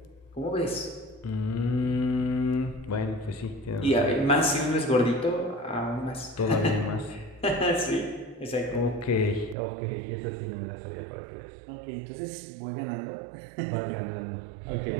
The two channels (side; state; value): left; drops out; at 9.6 s